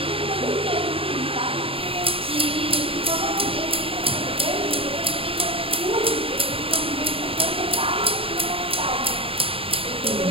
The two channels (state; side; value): late; left; 0.27 ms